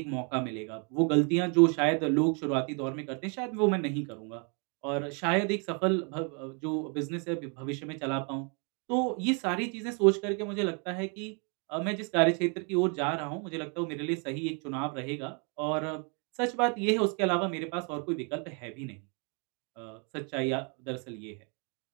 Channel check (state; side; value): quieter; left; 37.3 dB